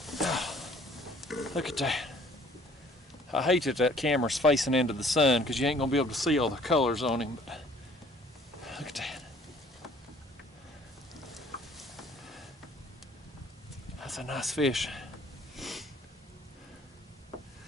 Oh, look at that. I hate that camera's facing into the sun because you ain't gonna be able to see all the colors on him, but look at that. That's a nice fish.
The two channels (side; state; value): both; normal; correlation 0.57